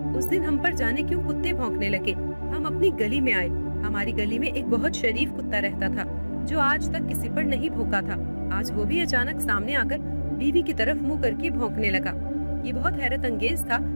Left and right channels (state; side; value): inverted; both; correlation -1.00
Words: उस दिन हम पर जाने क्यों कुत्ते भौंकने लगे। हम अपनी गली में आए। हमारी गली में एक बहुत शरीफ कुत्ता रहता था जो आज तक किसी पर नहीं भौंका था। आज वो भी अचानक सामने आकर बीवी की तरफ मुंह करके भौंकने लगा। ये बहुत हैरत अंगेज था,